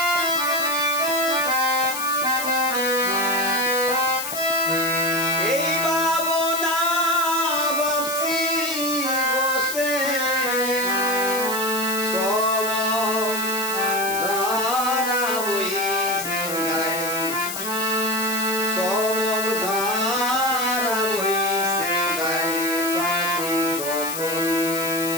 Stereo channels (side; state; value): left; noise; hiss, 6 dB below the sound